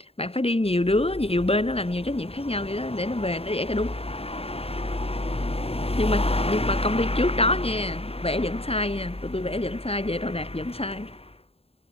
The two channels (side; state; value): right; late; 0.28 ms